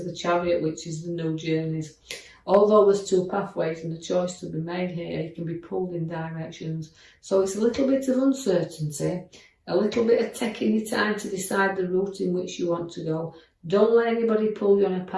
the Chariot, which is the new journeys. Although there's two pathways and a choice to be made here, you can be pulled in directions. So it's a little bit of uncertainty, a little bit of taking your time to decide the route in which you want to go. Don't let anybody pull you on a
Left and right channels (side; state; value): both; identical; correlation 1.00